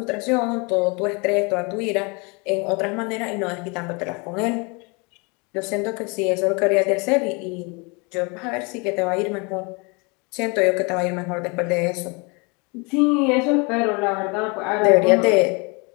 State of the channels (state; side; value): quieter; right; 30.4 dB